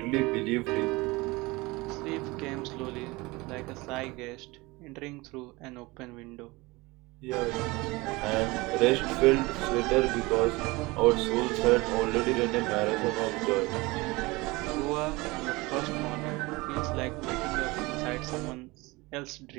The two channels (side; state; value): left; quieter; 22.9 dB